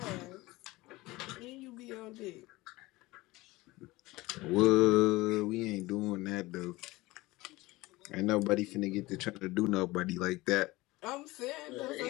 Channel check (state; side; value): quieter; right; 20.3 dB